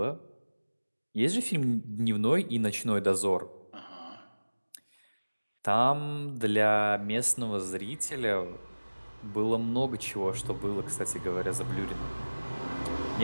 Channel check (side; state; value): both; inverted; correlation -1.00